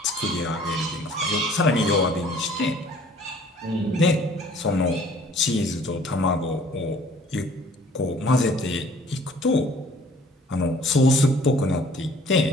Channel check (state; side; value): normal; both; correlation 0.54